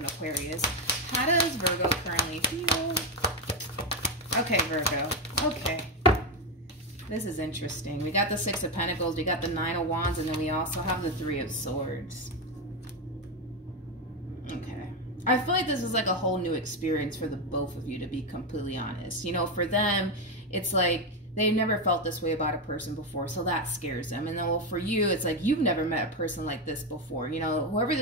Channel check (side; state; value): both; normal; correlation 0.09